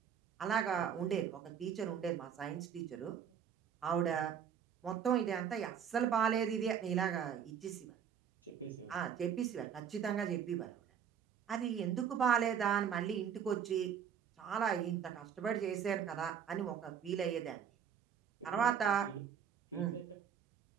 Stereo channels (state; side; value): quieter; left; 8.1 dB